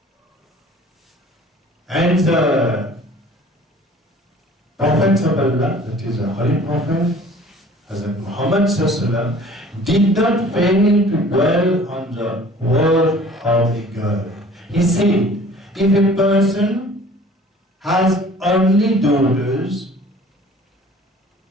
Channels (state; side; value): normal; both; correlation 0.49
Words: And the Prophets of Allah, that is the Holy Prophet, Hazrat Muhammad ﷺ, did not fail to dwell on the word of a girl. He said, if a person has only daughters,